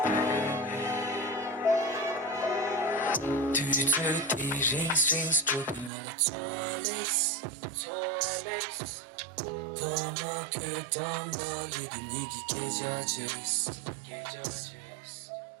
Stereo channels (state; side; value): drops out; left; at 5.9 s